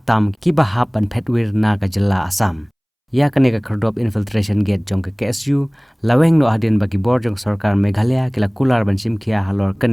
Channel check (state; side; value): identical; both; correlation 1.00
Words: ki ba ha ban phetwir na ka jilla Assam ya kane ka kerdop infiltration gate jong ka KSU laweng no adin bagi bor jong sarkar Meghalaya kila kular ban simkhia halor